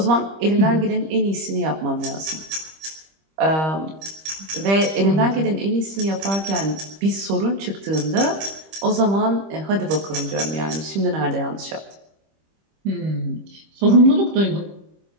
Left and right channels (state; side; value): late; left; 25 ms